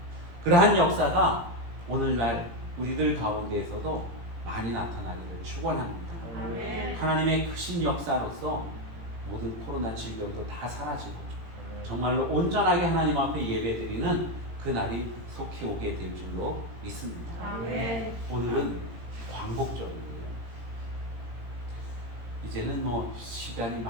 그러한 역사가 오늘날 우리들 가운데에서도 많이 나타나기를 축원합니다. 아멘. 하나님의 크신 역사로서 모든 코로나 질병도 다 사라지고 정말로 온전하게 하나님 앞에 예배드리는 그날이 속히 오게 될 줄로 믿습니다. 아멘. 오늘은 광복절이에요. 이제는 뭐 시간이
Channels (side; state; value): left; late; 18 ms